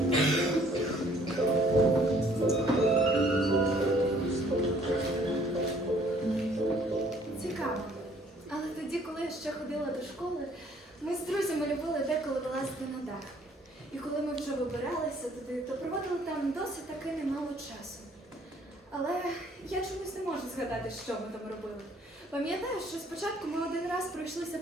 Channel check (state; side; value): normal; both; correlation 0.60